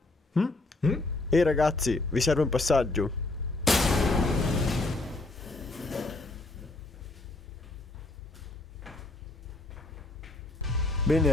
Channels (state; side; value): quieter; right; 3.0 dB